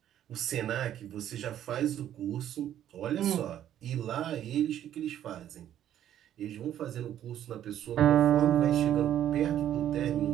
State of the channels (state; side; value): quieter; left; 11.1 dB